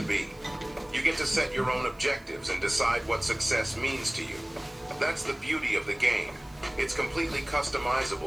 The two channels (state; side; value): noise; right; hiss, 28 dB below the sound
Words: be. You get to set your own objectives and decide what success means to you. That's the beauty of the game. It's completely